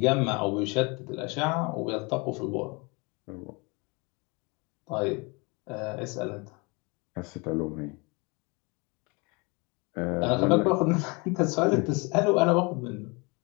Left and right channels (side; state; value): right; quieter; 29.0 dB